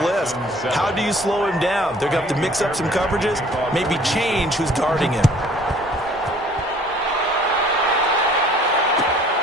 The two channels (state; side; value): normal; both; correlation 0.54